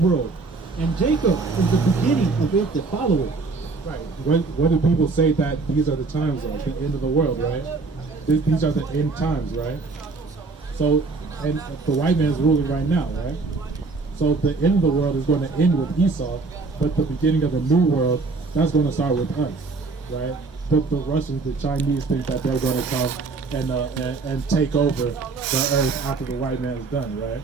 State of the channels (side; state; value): left; quieter; 4.0 dB